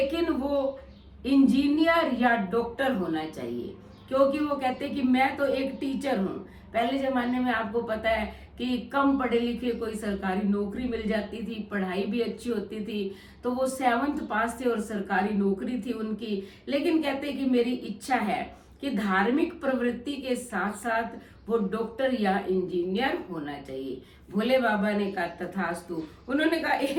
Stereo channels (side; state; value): both; identical; correlation 1.00